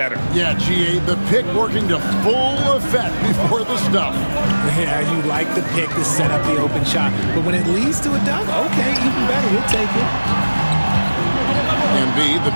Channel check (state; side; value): inverted; both; correlation -1.00